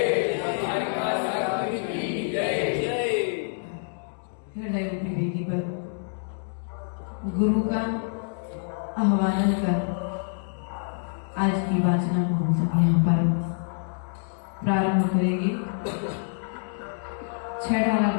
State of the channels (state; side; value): silent; right; digital silence